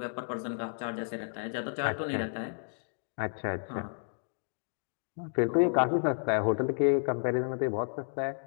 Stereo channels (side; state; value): right; silent; digital silence